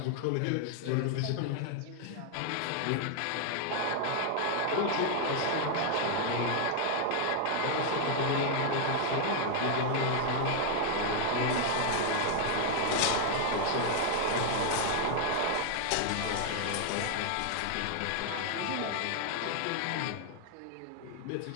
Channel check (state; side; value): different; both; correlation 0.00